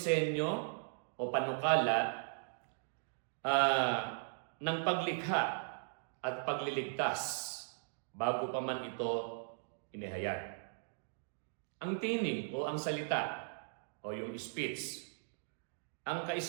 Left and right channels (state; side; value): silent; left; digital silence